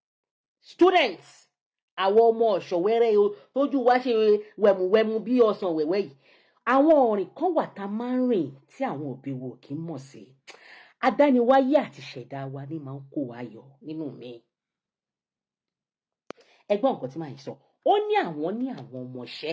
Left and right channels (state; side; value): identical; both; correlation 1.00